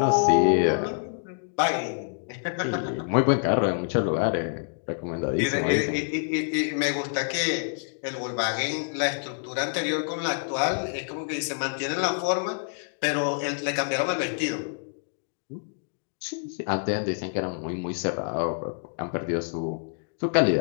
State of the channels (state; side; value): silent; right; digital silence